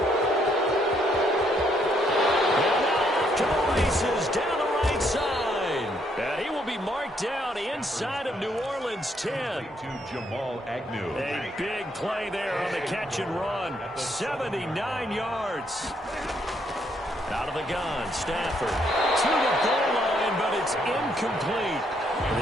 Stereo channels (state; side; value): normal; both; correlation 0.72